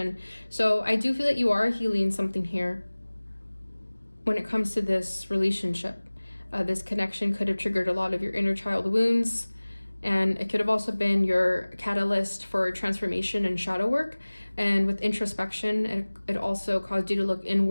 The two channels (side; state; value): both; inverted; correlation -1.00